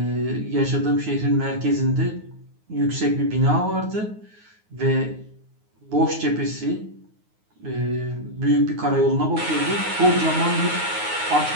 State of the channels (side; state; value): left; late; 9.5 ms